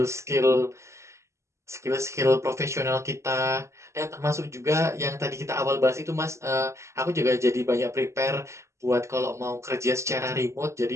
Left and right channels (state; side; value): late; left; 0.14 ms